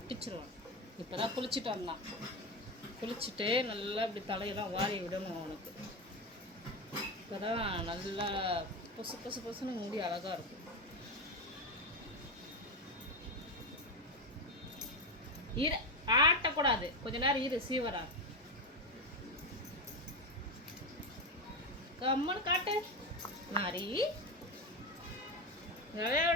இப்போ தான் குளிச்சுட்டு வந்தான். குளிச்சுட்டு நல்லா இப்படி தலையெல்லாம் வாரி விடணும் அவனுக்கு. இப்போ தான் நல்லா பொசு பொசு பொசுன்னு முடி அழகாக இருக்கும். இரு, ஆட்டக்கூடாது, கொஞ்ச நேரம் இரு. சீவரா கம்மனு காட்டு. மாறி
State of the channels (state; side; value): normal; both; correlation 0.15